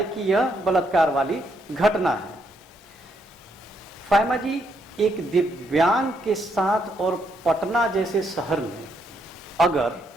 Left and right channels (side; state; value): both; normal; correlation 0.75